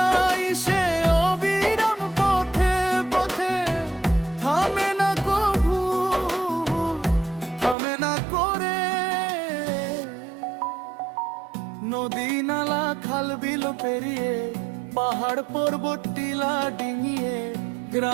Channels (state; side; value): drops out; left; at 7.8 s